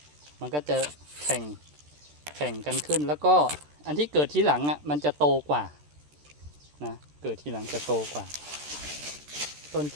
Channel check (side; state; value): left; late; 13 ms